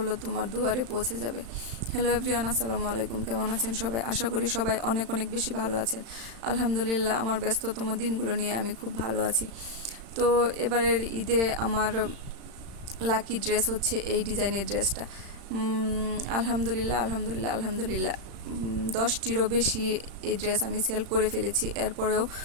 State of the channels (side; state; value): left; late; 35 ms